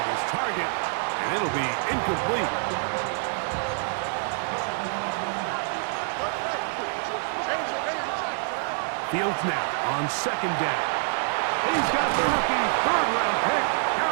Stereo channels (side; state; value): left; silent; 61 dB below the other